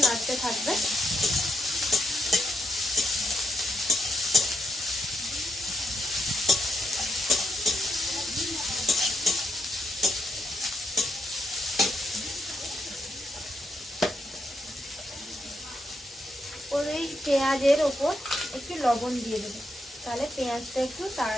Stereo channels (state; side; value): normal; both; correlation 0.80